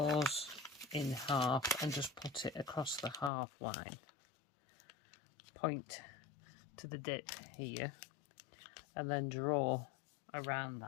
in half and just put it across the half line. Point to the dip here and then draw around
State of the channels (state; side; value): drops out; right; at 3.3 s